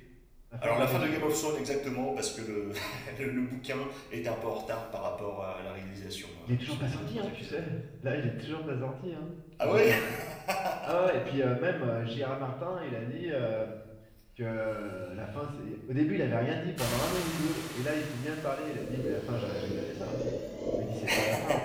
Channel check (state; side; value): identical; both; correlation 1.00